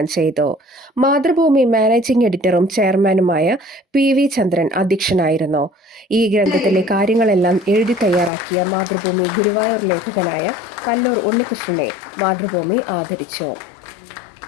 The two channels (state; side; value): drops out; right; at 8.3 s